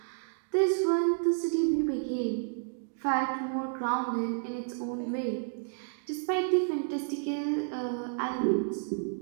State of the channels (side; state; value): left; silent; digital silence